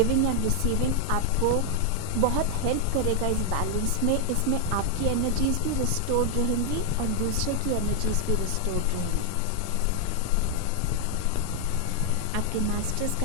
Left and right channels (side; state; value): both; different; correlation 0.00